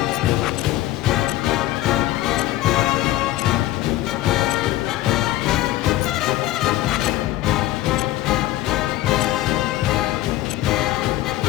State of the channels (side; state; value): right; quieter; 15.9 dB